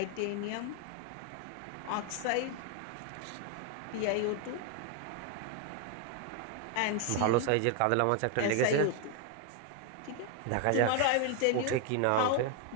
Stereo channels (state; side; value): different; both; correlation 0.01